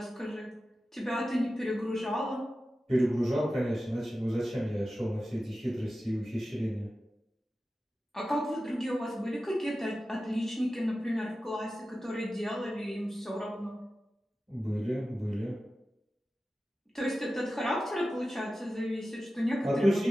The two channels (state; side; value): normal; both; correlation 0.94